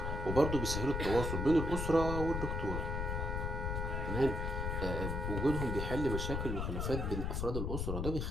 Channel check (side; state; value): left; noise; rumble, 1 dB below the sound